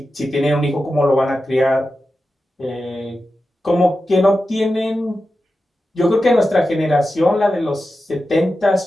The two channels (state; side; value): normal; both; correlation 0.91